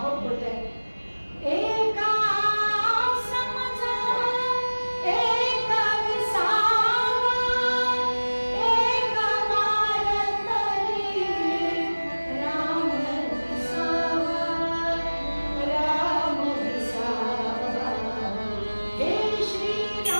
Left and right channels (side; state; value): both; inverted; correlation -1.00